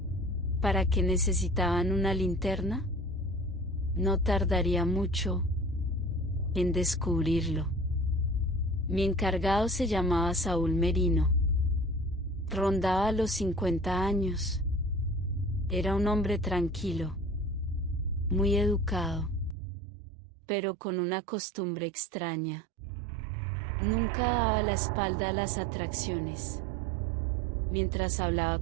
¿Para qué necesitaban una linterna? No tardaría mucho en descubrirlo. Mi encargado se llamaba Saúl Merino. Rondaba los 50 años. Era un hombre tranquilo, muy educado, pero con una costumbre extraña. Nunca daba la espalda a las atracciones. Mientras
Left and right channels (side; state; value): left; drops out; at 19.6 s